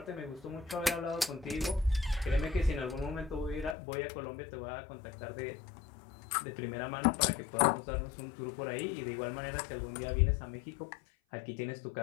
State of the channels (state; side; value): drops out; right; at 3.8 s